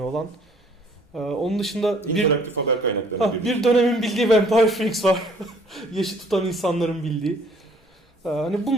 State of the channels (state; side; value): normal; both; correlation 0.58